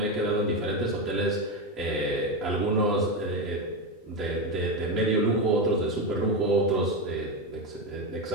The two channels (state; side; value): normal; both; correlation 0.13